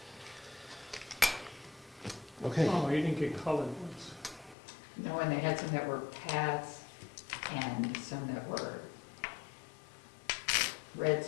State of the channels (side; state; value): right; drops out; at 4.5 s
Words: Okay, Oh, you didn't get colored ones. No, and they had some that were Pats and some that were Red